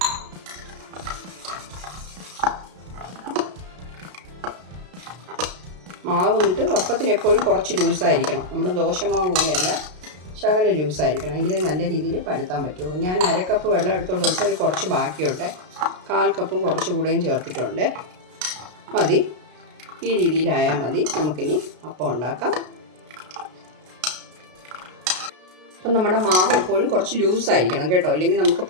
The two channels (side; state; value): left; late; 33 ms